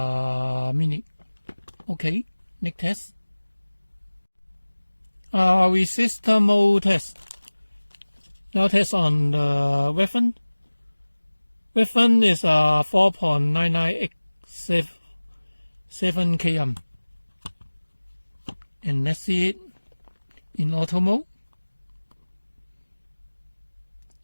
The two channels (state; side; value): inverted; both; correlation -1.00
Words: minute. Okay, next test. Resistor mode test. Now test on the weapon. Weapon is 4.9987 km. And let's see it in auto mode.